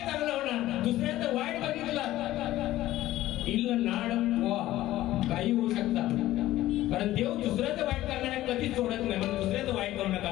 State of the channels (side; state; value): right; quieter; 15.2 dB